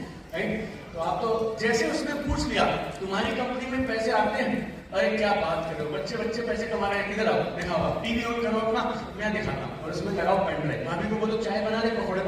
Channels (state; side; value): identical; both; correlation 1.00